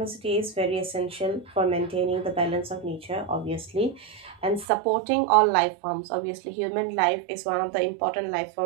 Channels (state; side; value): drops out; left; at 4.7 s